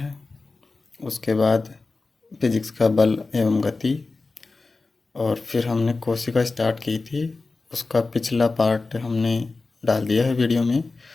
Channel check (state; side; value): quieter; right; 3.7 dB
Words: उसके बाद फिजिक्स का बल एवं गति, और फिर हमने कोशिका स्टार्ट की थी, उसका पिछला पार्ट हमने डाल दिया है वीडियो में।